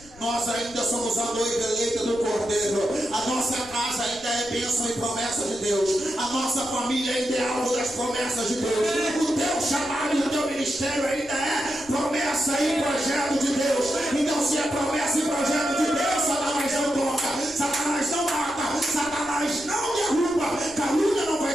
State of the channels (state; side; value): noise; left; rumble, 22 dB below the sound